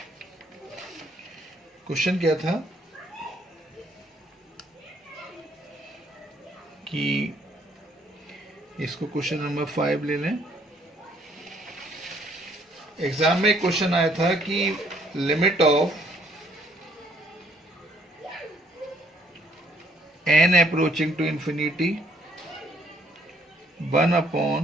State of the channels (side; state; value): both; normal; correlation 0.65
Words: क्वेश्चन क्या था कि इसको क्वेश्चन नंबर 5 ले लें। एग्जाम में एक क्वेश्चन आया था कि limit of n approaching to infinity